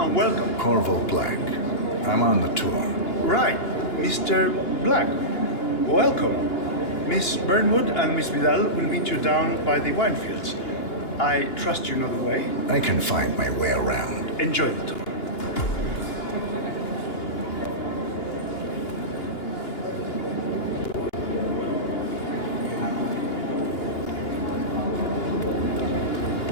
welcome. Corvo Black. I'm on the tour. Right, Mr. Black. Welcome. Miss Burnwood and Miss Vidal will meet you down by the wine fields. I trust you know the way. I can find my way around. Enjoy the tour.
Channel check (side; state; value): right; late; 2.9 ms